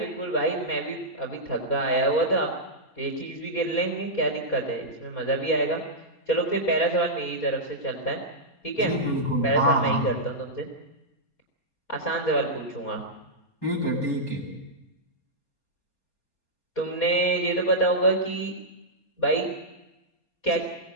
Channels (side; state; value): right; late; 4.2 ms